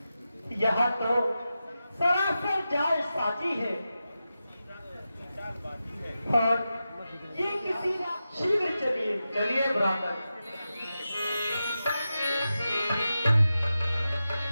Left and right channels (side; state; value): both; inverted; correlation -0.92